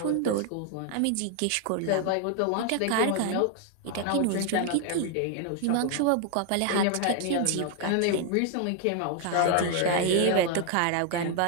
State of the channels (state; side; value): different; both; correlation 0.00